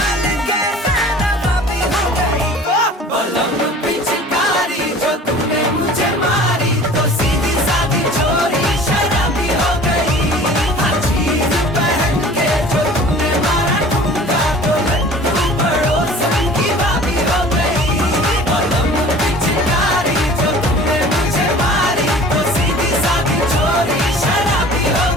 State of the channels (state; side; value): normal; both; correlation 0.45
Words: के नवाबी हो गई। बलम पिचकारी जो तूने मुझे मारी तो सीधी सादी चोरी शराबी हो गई। हर चीज पहन के जो तूने मारा ठुमका तो लड्डू पड़ोसन की भाभी हो गई। बलम पिचकारी जो तूने मुझे मारी तो सीधी सादी चोरी शराबी हो